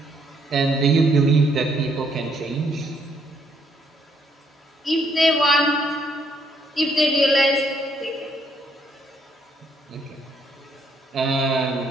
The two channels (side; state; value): both; normal; correlation 0.70